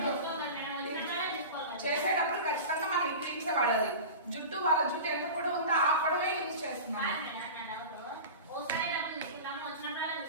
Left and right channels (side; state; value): both; inverted; correlation -0.32